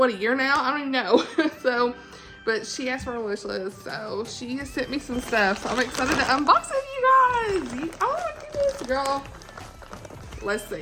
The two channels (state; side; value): identical; both; correlation 1.00